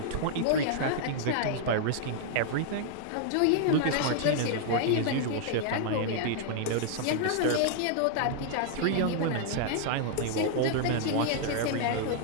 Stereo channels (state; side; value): different; both; correlation -0.01